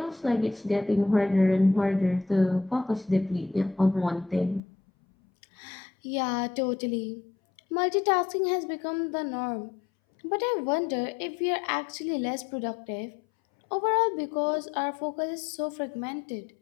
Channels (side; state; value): right; drops out; at 4.6 s